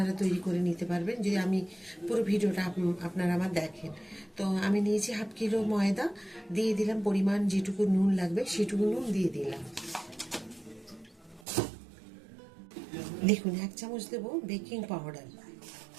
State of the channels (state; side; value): drops out; left; at 11.5 s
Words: তৈরি করে নিতে পারবেন যদি আমি পুরো ভিডিওটা আপনারা আমার দেখেন। তো আমি নিয়েছি 1/2 কিলো ময়দা, দিয়ে দিলাম পরিমাণ যেটুকু নুন লাগবে সেটুকু নুন দিয়ে দিলাম। দেখুন 1 চামচ দেব বেকিং পাউডার,